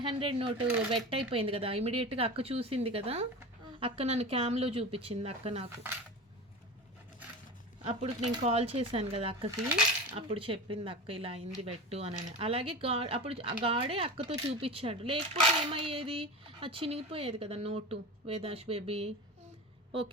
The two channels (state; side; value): normal; both; correlation 0.29